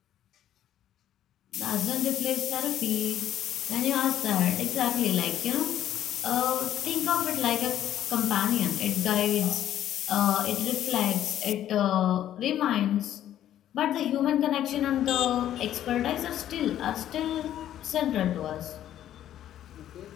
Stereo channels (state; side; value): quieter; right; 11.6 dB